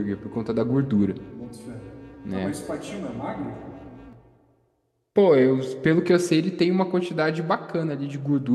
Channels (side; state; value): both; identical; correlation 1.00